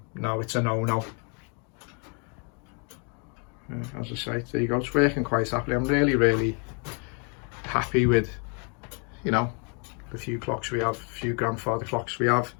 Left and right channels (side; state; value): right; quieter; 37.3 dB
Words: no, it's a no-no. As I say, there you go, it's working quite happily. I'm really, really happy with, you know, the few clocks we have, a few grandfather clocks we have.